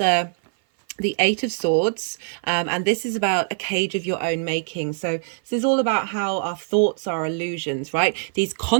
8 of Swords, and this is about a cage of your own making. So this is all about how our thoughts are illusions, right? These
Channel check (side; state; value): left; silent; 57 dB below the other